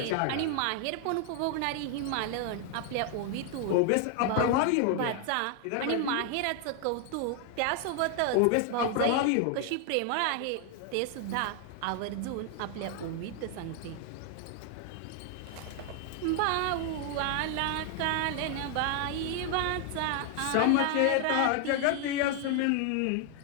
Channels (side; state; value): both; different; correlation 0.00